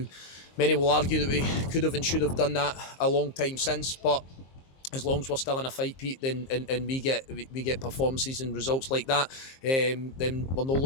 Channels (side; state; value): right; late; 23 ms